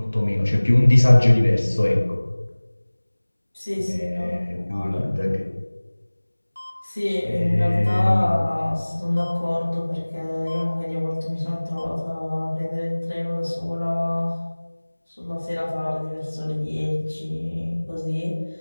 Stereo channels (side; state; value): both; inverted; correlation -1.00